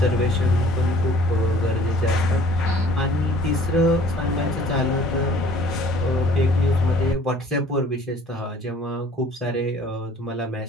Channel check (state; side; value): normal; both; correlation 0.53